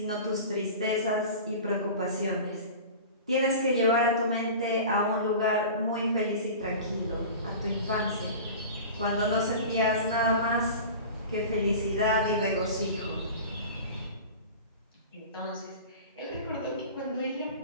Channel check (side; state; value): both; inverted; correlation -0.36